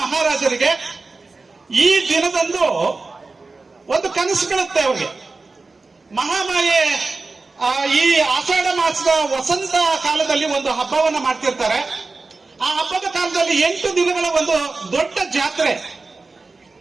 ಮಹಾರಾಜರಿಗೆ ಈ ದಿನದಂದು ಒಂದು ಕನಸು ಬೀಳುತ್ತೆ ಅವರಿಗೆ. ಮಹಾಮಾಯೆ ಈ ಆಷಾಢ ಮಾಸದ ವಸಂತ ಕಾಲದಲ್ಲಿ ಒಂದು ಹಬ್ಬವನ್ನ ಮಾಡ್ತಿರ್ತಾರೆ. ಆ ಹಬ್ಬದ ಕಾಲದಲ್ಲಿ 8 ದಿನಗಳ ಒಂದು ದೊಡ್ಡ ಜಾತ್ರೆ,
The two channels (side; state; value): left; quieter; 3.7 dB